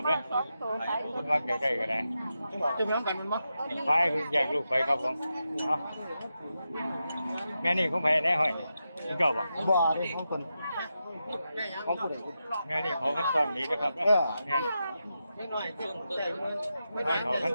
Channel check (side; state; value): both; inverted; correlation -0.88